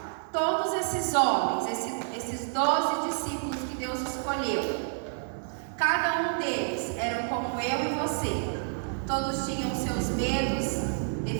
Todos esses homens, esses 12 discípulos que Deus escolheu, cada um deles eram como eu e você. Todos tinham seus medos,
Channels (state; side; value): silent; left; 59 dB below the other